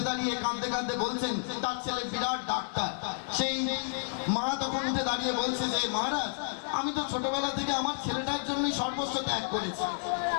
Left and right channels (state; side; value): silent; right; digital silence